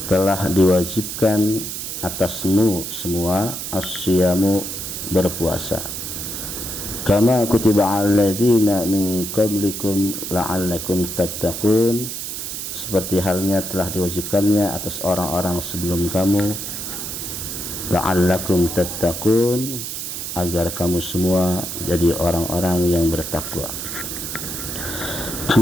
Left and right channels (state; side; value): noise; right; hiss, 6 dB below the sound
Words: telah diwajibkan atasmu semua as-siyamu, berpuasa, kama kutiba 'alal ladzina min qablikum la'allakum tattaqun, seperti halnya telah diwajibkannya atas orang-orang sebelum kamu, la'allakum tattaqun, agar kamu semua jadi orang-orang yang bertakwa.